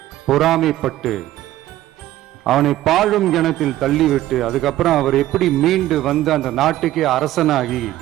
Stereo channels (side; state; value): left; quieter; 14.5 dB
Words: பொறாமைப்பட்டு அவனை பாழும் கிணத்தில் தள்ளிவிட்டு அதுக்கப்புறம் அவர் எப்படி மீண்டு வந்து அந்த நாட்டுக்கே அரசனாகி.